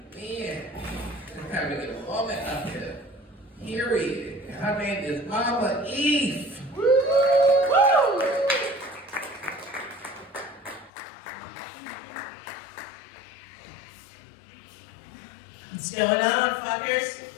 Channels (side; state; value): right; drops out; at 10.9 s